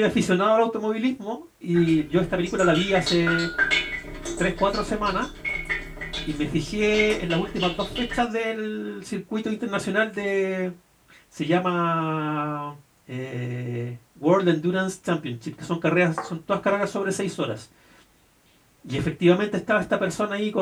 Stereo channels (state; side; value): identical; both; correlation 1.00